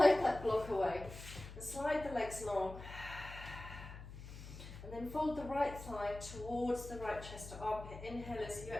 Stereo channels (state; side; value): noise; left; hum, 12 dB below the sound